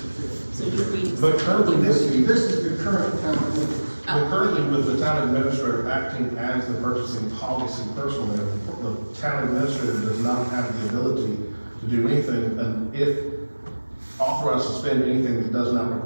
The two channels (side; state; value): both; inverted; correlation -1.00